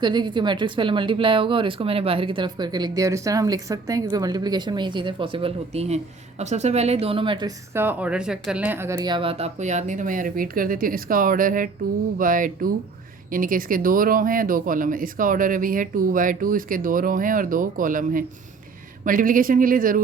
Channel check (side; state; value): left; quieter; 4.5 dB